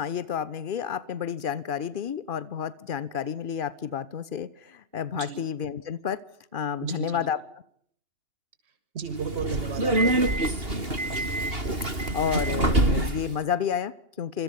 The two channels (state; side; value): late; left; 2.8 ms